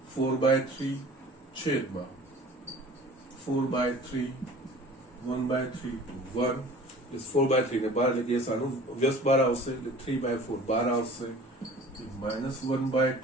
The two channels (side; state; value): both; normal; correlation 0.44